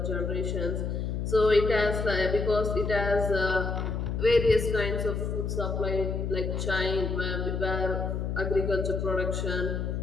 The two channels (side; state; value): left; noise; hum, 2 dB below the sound